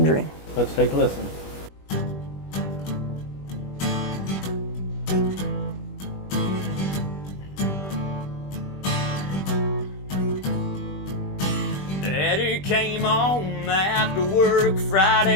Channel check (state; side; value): late; right; 21 ms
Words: Dream. Let's take a listen. Daddy came home after work